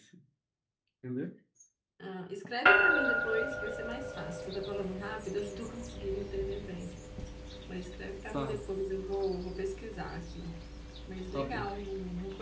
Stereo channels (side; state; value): both; identical; correlation 1.00